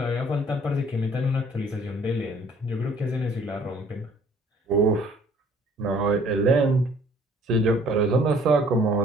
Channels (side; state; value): both; normal; correlation 0.57